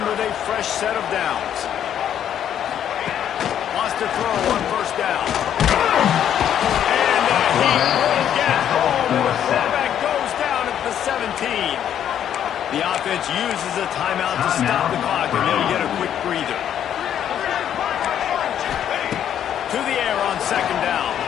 with a fresh set of downs. Lost to throw on first down. And he will get home. The quarterback goes down at the 17. The offense uses a timeout to stop the clock, and they'll get a quick breather. To the air on second down.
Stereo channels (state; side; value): quieter; right; 9.9 dB